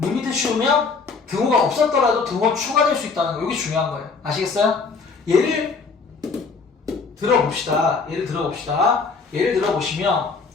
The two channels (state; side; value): quieter; right; 4.7 dB